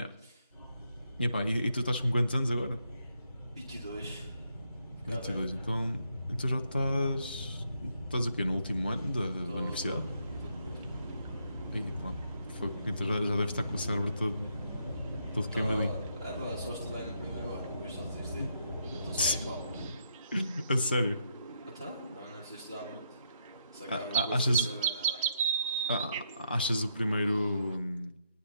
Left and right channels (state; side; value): inverted; both; correlation -0.76